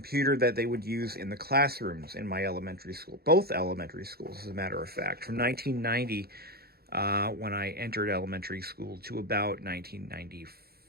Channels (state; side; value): late; left; 0.45 ms